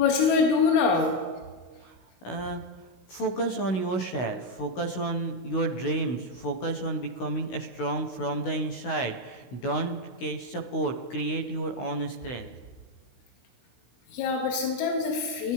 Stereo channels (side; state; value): right; late; 16 ms